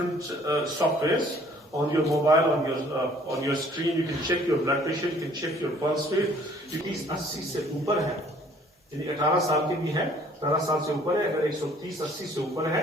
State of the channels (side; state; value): both; normal; correlation 0.57